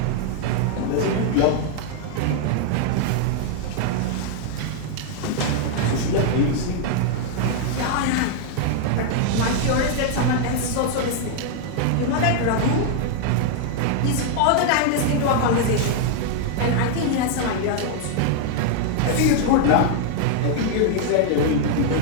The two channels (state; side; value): different; both; correlation 0.00